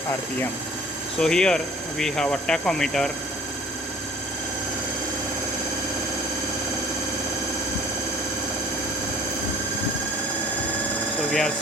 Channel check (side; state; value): both; normal; correlation 0.50